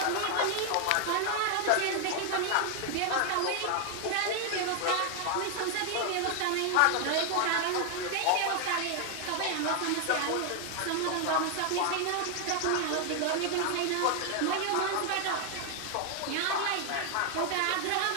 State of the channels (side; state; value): both; different; correlation 0.00